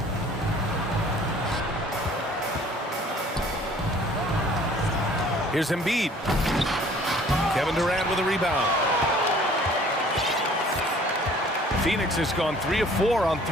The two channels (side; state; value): both; normal; correlation 0.53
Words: Here's Embiid. Kevin Durant with a rebound. Phoenix has gone 3 of 4 on